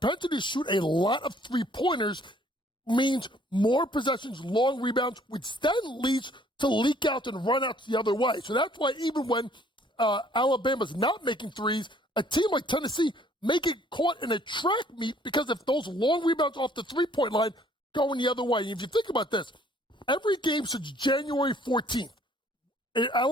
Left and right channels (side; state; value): both; normal; correlation 0.60